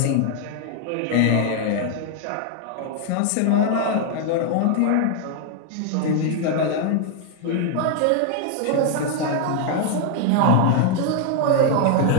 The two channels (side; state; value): both; different; correlation 0.00